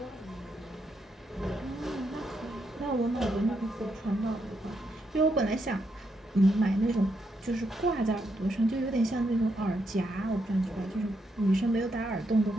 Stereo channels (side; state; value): both; normal; correlation 0.79